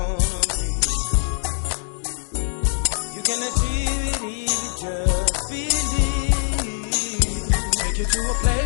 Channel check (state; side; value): silent; right; digital silence